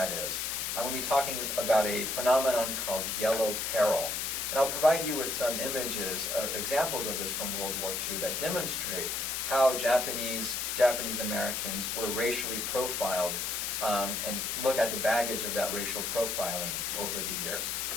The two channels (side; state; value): left; noise; hiss, 1 dB below the sound